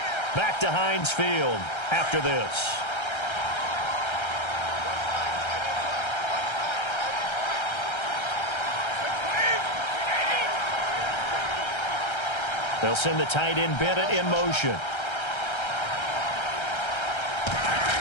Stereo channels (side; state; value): right; late; 1.3 ms